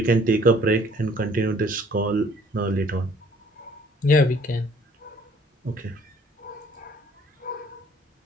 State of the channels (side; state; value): both; normal; correlation 0.57